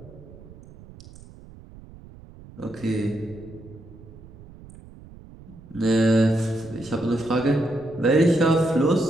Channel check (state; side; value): noise; right; rumble, 20 dB below the sound